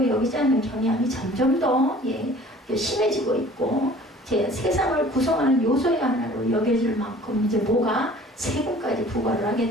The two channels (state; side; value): normal; both; correlation 0.49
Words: 여기지 않는 경향이 점점 더 예, 심해지고 있고 제 세상을 구성하는 요소의 하나로 여겨질 만큼 이제 뭐가 세금까지 부과를